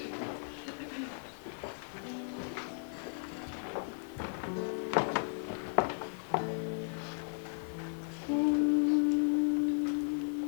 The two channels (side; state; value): right; silent; 54 dB below the other